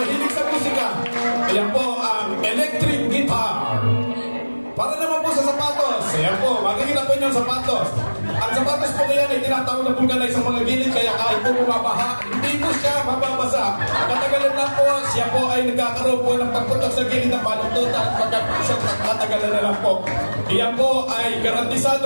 sa musika. Yan po ang electric guitar. Para naman po sa sapatos, ayan po, makikita po niyo ang sapatos. Ang sapatos po ngayon ay tinatawag na vulcanize sa mga gilid, kaya kahit po bumabaha, hindi po siya mababasa. Katagalan na po, siya po ay nagkakaroon po ng pagputok sa gilid ng baluntutan at katagalan na lang po. Iyan po ay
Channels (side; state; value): both; inverted; correlation -1.00